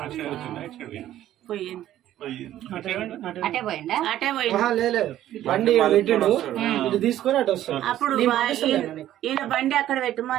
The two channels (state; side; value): quieter; left; 12.7 dB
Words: పోయింది. అటే పోయిండా? అటే అప్పుడు ఈయన బండి అక్కడ